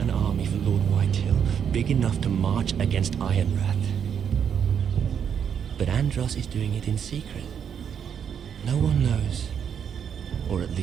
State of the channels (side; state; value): left; quieter; 7.9 dB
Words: an army for Lord Whitehill, big enough to march against Ironrath. But Andros is doing it in secret. No one knows. Or at